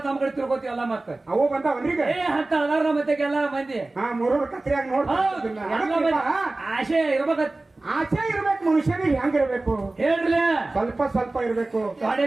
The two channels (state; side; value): quieter; left; 3.0 dB